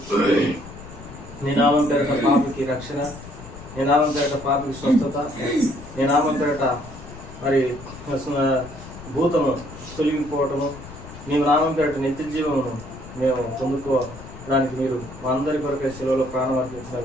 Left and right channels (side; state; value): left; noise; rumble, 15 dB below the sound